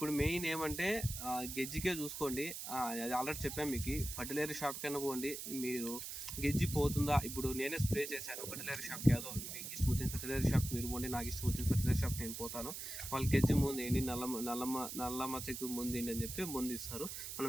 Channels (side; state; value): right; noise; hiss, 7 dB below the sound